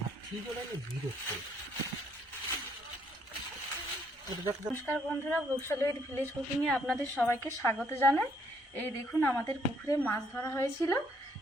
নমস্কার বন্ধুরা, বৈশালী উইথ ভিলেজ কুকিং এ আপনাদের সবাইকে স্বাগত জানাই। এই দেখুন, আমাদের পুকুরে মাছ ধরা হয়েছিল,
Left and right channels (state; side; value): normal; both; correlation 0.69